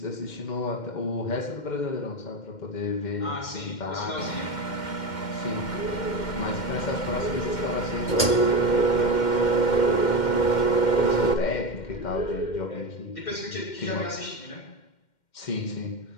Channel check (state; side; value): late; right; 2.1 ms